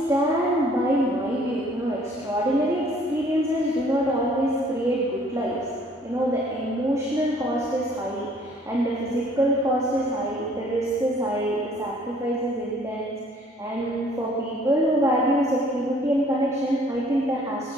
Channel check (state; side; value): normal; both; correlation 0.58